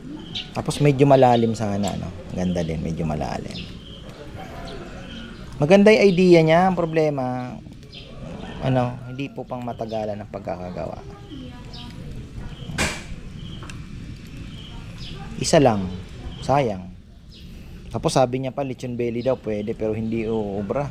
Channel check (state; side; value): identical; both; correlation 1.00